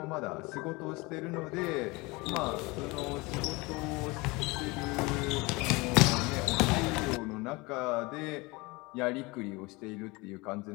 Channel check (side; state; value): right; quieter; 24.4 dB